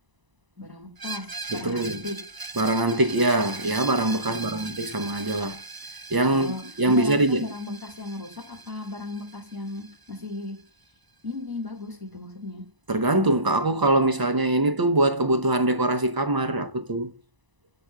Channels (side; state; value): left; late; 1.0 ms